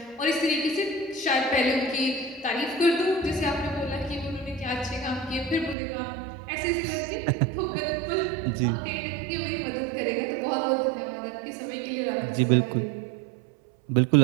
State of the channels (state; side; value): drops out; left; at 5.8 s